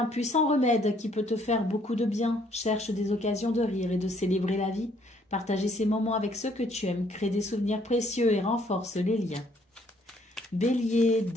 puissant remède qui peut te faire beaucoup de bien. Cherche des occasions de rire et de célébrer la vie. Partager ces moments avec ceux que tu aimes, crée des souvenirs précieux et renforce les liens. Bélier,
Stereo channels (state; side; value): normal; both; correlation 0.65